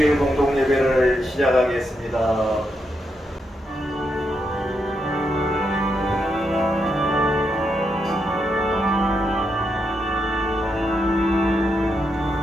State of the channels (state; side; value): normal; both; correlation 0.82